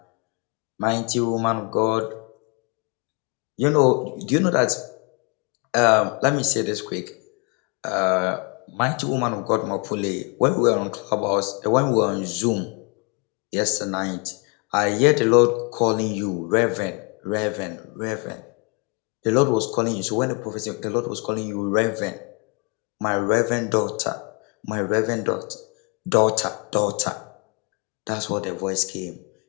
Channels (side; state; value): right; quieter; 31.9 dB